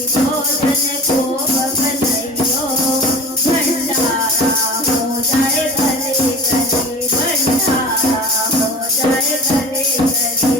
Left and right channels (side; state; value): both; normal; correlation 0.37